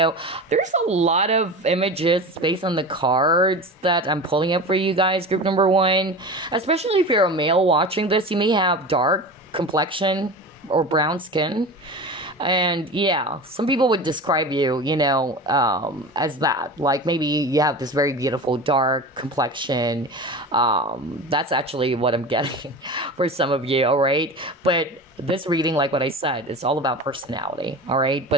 a lot of images based on the cards that I'm pulling up for you guys, group number 1. Especially if you're a male watching this, you may have dark complexion or brown skin. And yeah, some people would describe you, as that. Like maybe you have this very beautiful dark complexion. That's actually what I'm getting for some of you, all right? But this reading, like what I said, is all about personality, all right?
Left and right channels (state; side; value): normal; both; correlation 0.31